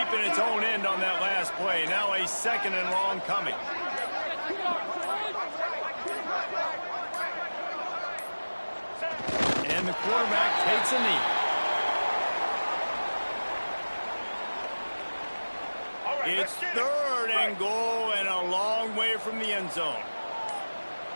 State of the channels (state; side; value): inverted; both; correlation -1.00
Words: in its own end on that last play. Now a second and long coming. And the quarterback takes a knee. It's third and goal and a long way from the end zone.